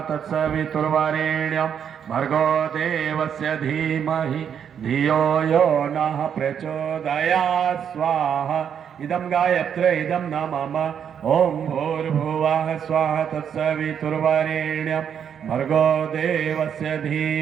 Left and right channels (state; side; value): quieter; left; 8.2 dB